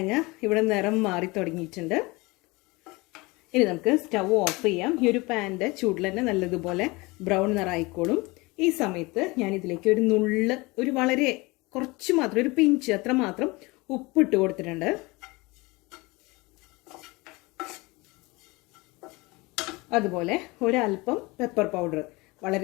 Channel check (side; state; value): right; quieter; 24.0 dB